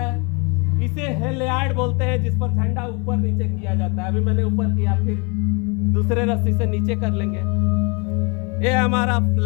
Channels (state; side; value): quieter; right; 31.0 dB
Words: इसे हेलियार्ड बोलते हैं, जिस पर झंडा ऊपर नीचे किया जाता है। अभी मैंने ऊपर किया, फिर दूसरे रस्सी से नीचे कर लेंगे। ये हमारा